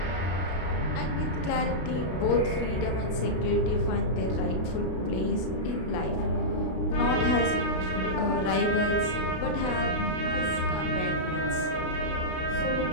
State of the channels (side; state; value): right; late; 33 ms